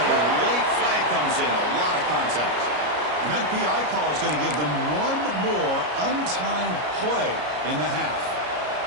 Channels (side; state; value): left; late; 33 ms